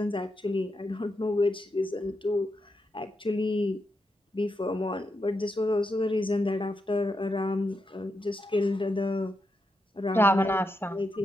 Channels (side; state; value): both; normal; correlation 0.85